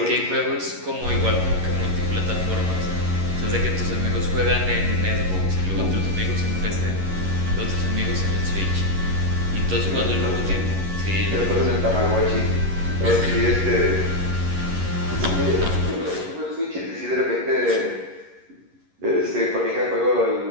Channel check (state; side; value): late; left; 11 ms